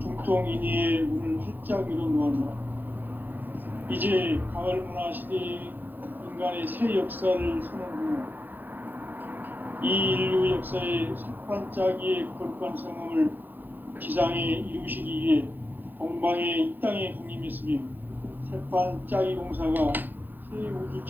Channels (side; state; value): left; late; 0.088 ms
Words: 중통인의의 문을 활짝 열어놓았노라. 이제 가을 문화 시대의 인간의 새 역사를 선언하며 이 인류 역사의 색반짝이의 거룩한 성함을 지상에 이루시기 위해 동방의 이 땅에 강림했으며 색반짝이 공사가 새 우주